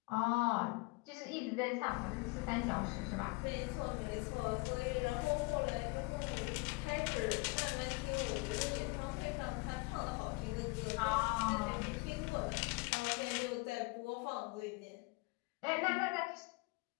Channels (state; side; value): quieter; right; 26.3 dB